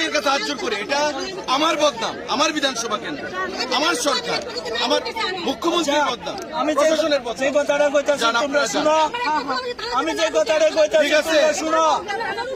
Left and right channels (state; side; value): identical; both; correlation 1.00